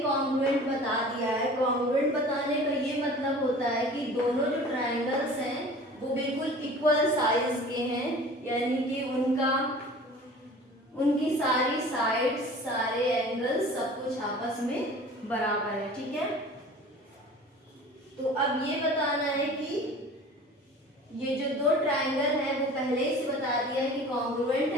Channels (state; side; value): normal; both; correlation 0.42